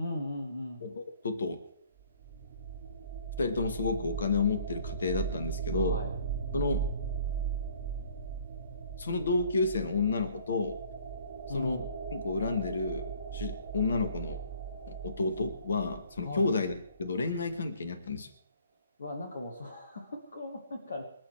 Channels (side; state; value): both; inverted; correlation -0.56